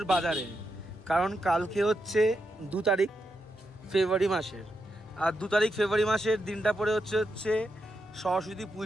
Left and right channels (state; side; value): normal; both; correlation 0.84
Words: বাজারে। কারণ কালকে হচ্ছে 2 তারিখ ফেব্রুয়ারি মাসের, আর 2 তারিখ ফেব্রুয়ারি মাসের দিনটা পরে হচ্ছে সরস্বতী